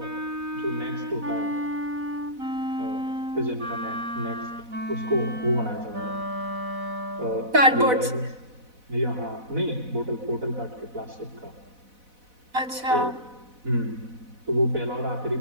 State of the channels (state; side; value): late; left; 4.0 ms